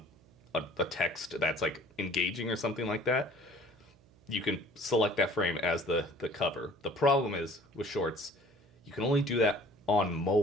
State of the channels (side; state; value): right; noise; hum, 28 dB below the sound